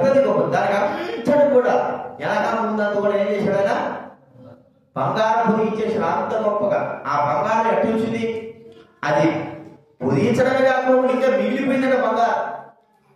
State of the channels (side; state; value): both; identical; correlation 1.00